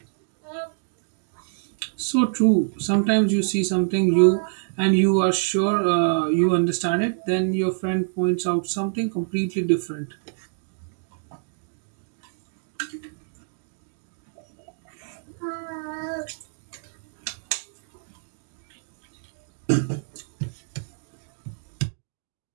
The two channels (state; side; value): silent; left; digital silence